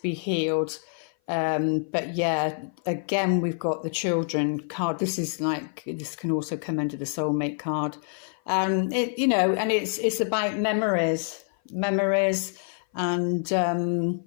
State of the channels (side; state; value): right; silent; 56 dB below the other